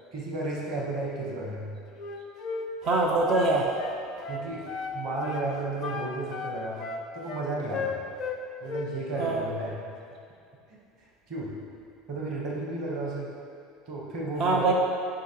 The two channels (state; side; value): normal; both; correlation 0.34